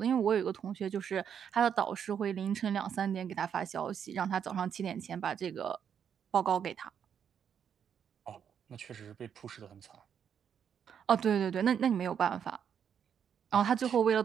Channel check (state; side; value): quieter; left; 8.1 dB